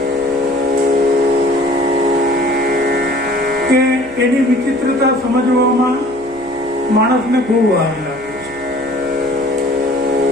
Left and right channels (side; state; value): right; noise; hum, 22 dB below the sound